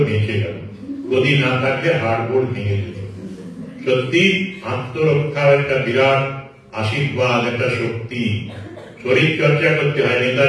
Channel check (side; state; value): both; identical; correlation 1.00